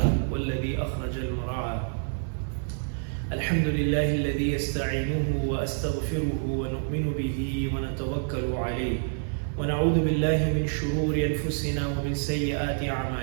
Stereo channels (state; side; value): silent; left; 60 dB below the other